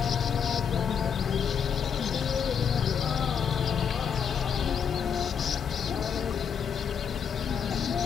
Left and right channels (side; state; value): right; quieter; 7.3 dB